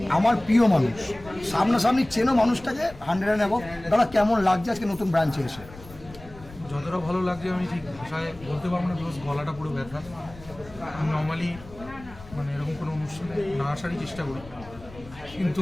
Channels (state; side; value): noise; left; rumble, 19 dB below the sound